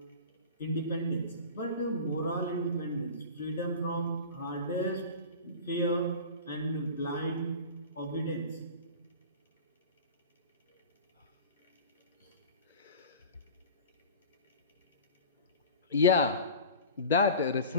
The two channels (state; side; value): inverted; both; correlation -0.36